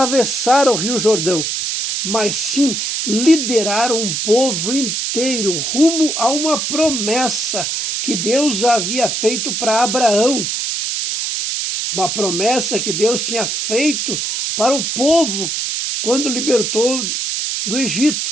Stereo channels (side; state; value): right; noise; hiss, 1 dB below the sound